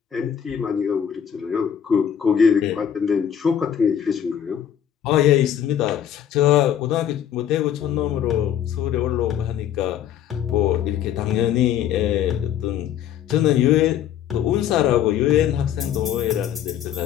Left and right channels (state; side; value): quieter; right; 9.6 dB